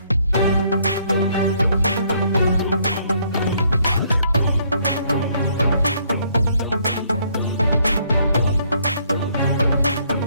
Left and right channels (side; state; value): both; inverted; correlation -0.67